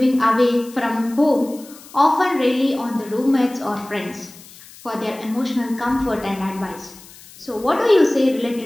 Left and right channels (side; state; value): left; noise; hiss, 21 dB below the sound